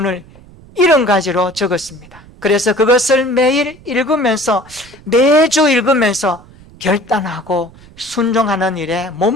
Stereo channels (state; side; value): noise; right; rumble, 23 dB below the sound